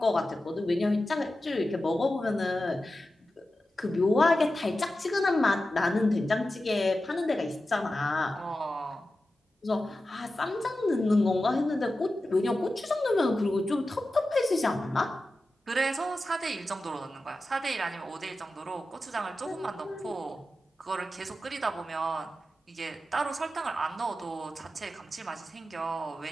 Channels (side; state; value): both; normal; correlation 0.93